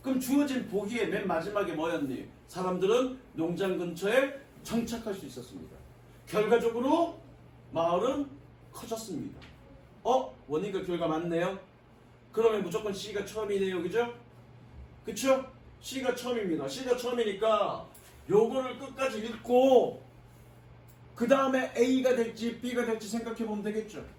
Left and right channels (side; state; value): both; identical; correlation 1.00